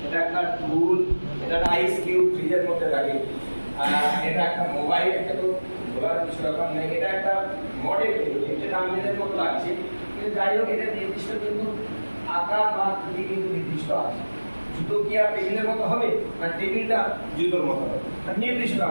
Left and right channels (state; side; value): inverted; both; correlation -1.00